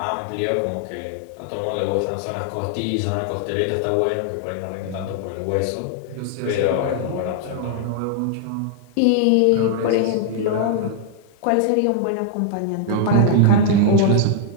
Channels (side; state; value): both; different; correlation -0.01